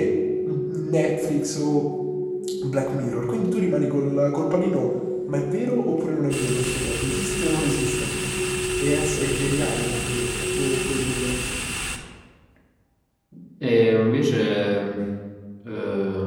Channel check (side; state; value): both; identical; correlation 1.00